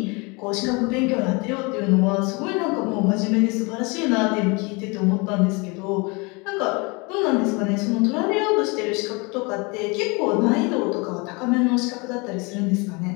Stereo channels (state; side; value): quieter; right; 28.4 dB